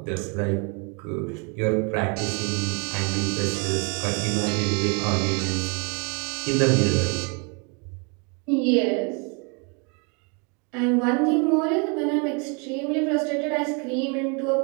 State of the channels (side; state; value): left; quieter; 34.6 dB